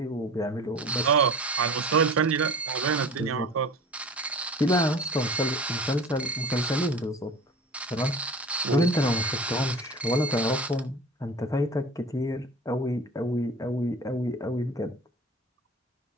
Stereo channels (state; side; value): normal; both; correlation 0.39